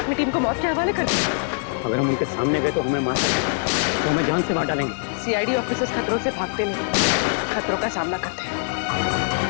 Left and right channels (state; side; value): silent; right; 64 dB below the other